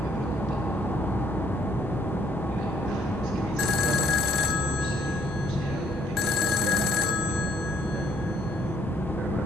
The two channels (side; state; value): both; normal; correlation 0.65